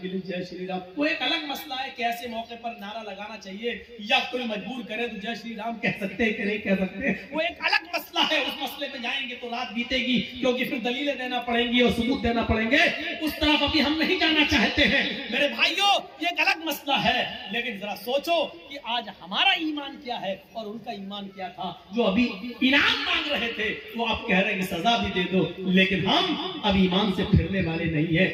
کے لیے جے شری رام. وہ ایک الگ مسئلہ ہے کہ ایسے موقع پر نعرہ لگانا چاہیے یا کوئی مجبور کرے تو جے شری رام کہہ سکتے ہیں کہ نہیں کہہ سکتے، وہ ایک الگ مسئلہ ہے. اس مسئلے پہ جائیں گے تو رات بیتے گی، کیونکہ پھر دلیلیں دینا پڑیں گی اور ثبوت دینا پڑیں گے. اس طرف ابھی ہم نہیں جانا چاہتے ہیں. میرے بھائیوں یہ ایک الگ مسئلہ ہے، لیکن ذرا سوچو کہ آج ہمارا ایمان کیا ہے اور ان کا ایمان کیا تھا. جو ابھی انعام مانگ رہے تھے وہ آپ کہہ رہے ہیں کہ سزا بھی دے دو، لیکن ہم اب ایمان سے پھرنے والے نہیں ہیں.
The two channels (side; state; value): both; identical; correlation 1.00